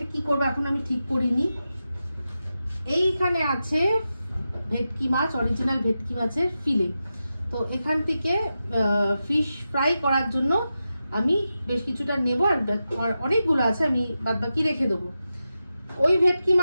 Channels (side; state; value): both; inverted; correlation -0.90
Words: কি করবো এখন আমি ঠিক করিনি। এইখানে আছে ভেটকি মাছ, অরিজিনাল ভেটকি মাছের ফিলে। তো এখান থেকে ফিশ ফ্রাই করার জন্য আমি বেশ কিছুটা নেব, আর অনেকগুলো আছে, আমি বাদবাকি রেখে দেবো। ওই ভেটকি